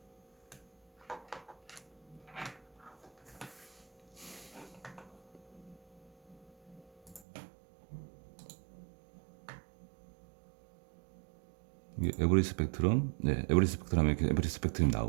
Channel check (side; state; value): left; drops out; at 7.2 s